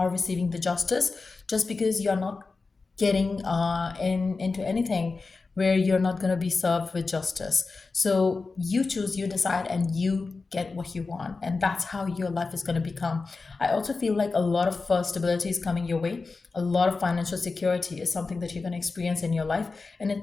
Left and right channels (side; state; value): right; quieter; 4.1 dB